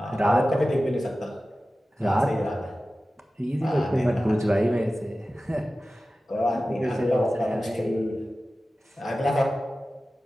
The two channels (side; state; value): both; normal; correlation 0.95